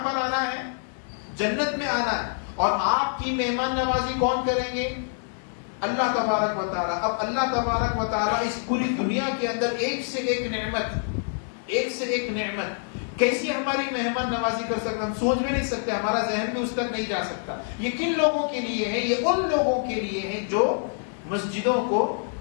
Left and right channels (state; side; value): silent; right; digital silence